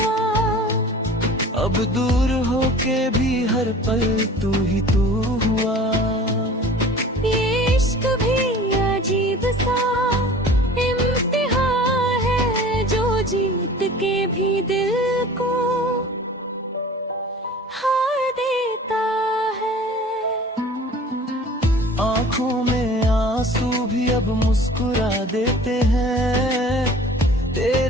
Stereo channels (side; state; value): both; normal; correlation 0.44